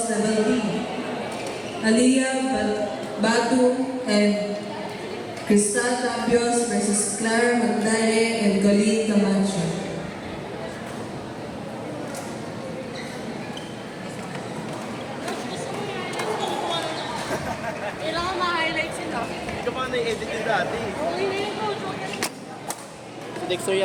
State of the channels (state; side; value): identical; both; correlation 1.00